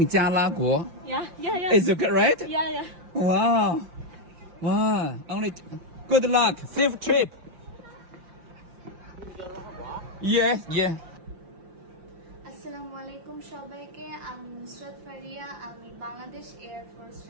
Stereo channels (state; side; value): late; left; 5.7 ms